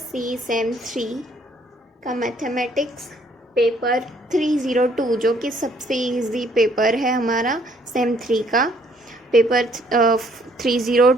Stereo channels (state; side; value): normal; both; correlation 0.64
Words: Sem 3 का mathematics paper 302 जो कि सबसे इजी पेपर है हमारा सेम 3 का पेपर